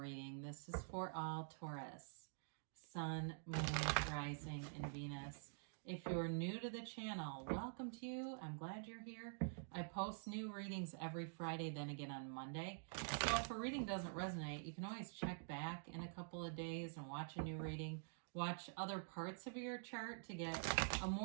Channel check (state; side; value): silent; left; digital silence